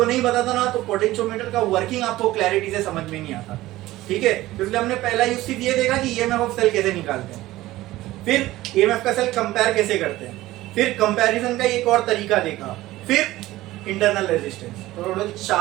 नहीं बताता ना तो पोटेंशियोमीटर का वर्किंग आपको क्लैरिटी से समझ में नहीं आता। ठीक है, इसलिए हमने पहला यूज सिर्फ ये देखा कि ईएमएफ ऑफ सेल कैसे निकालते हैं, फिर ईएमएफ का सेल कंपेयर कैसे करते हैं, फिर कंपैरिजन का एक और तरीका देखा, फिर इंटरनल रेजिस्टेंस। तो टोटल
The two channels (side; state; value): left; quieter; 16.8 dB